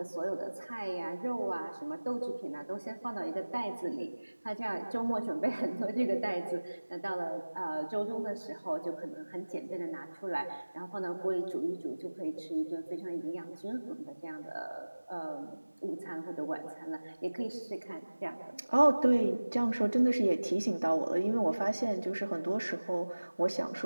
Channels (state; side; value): inverted; both; correlation -1.00